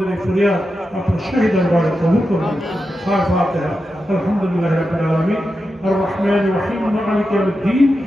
এই ফরিয়াদ আপনার শাহী দরবারে কবুল করে নিন। ফাতিহা। আলহামদুলিল্লাহি রাব্বিল আলামিন আর রহমানির রহিম মালিকি ইয়াউমিদ্দিন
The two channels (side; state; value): both; normal; correlation 0.89